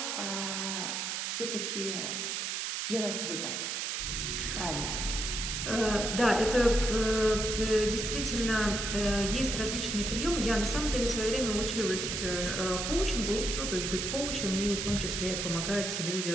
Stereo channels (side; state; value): right; noise; hiss, 2 dB below the sound